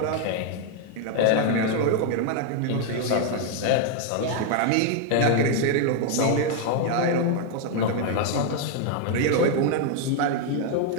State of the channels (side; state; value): both; different; correlation 0.00